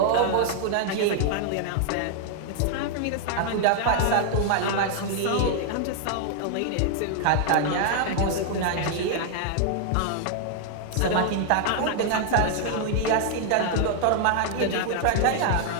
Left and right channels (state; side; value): different; both; correlation -0.01